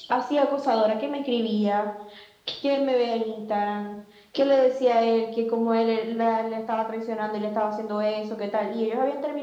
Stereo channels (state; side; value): identical; both; correlation 1.00